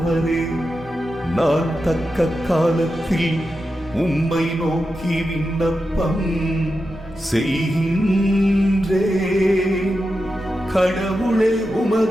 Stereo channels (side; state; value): both; normal; correlation 0.90